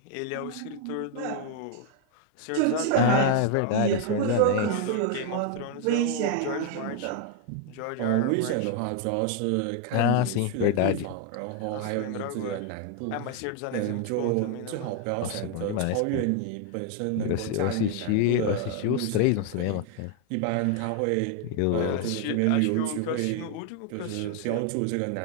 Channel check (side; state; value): both; different; correlation 0.00